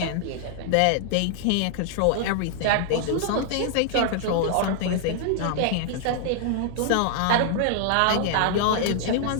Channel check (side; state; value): both; different; correlation -0.01